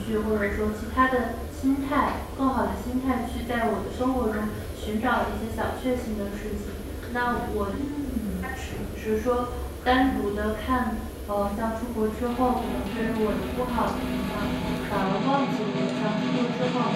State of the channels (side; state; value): both; identical; correlation 1.00